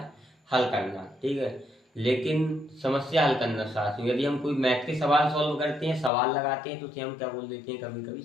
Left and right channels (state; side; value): drops out; right; at 6.1 s